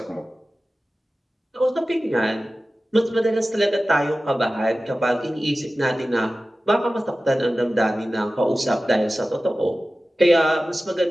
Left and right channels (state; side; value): normal; both; correlation 0.95